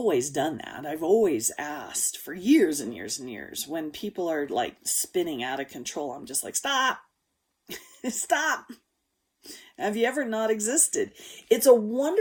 done that. I've always asked for years and years and years. When people are like spinning out of control, I'm just like, stop. Stop. Have you ever not existed? It's a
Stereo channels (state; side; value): identical; both; correlation 1.00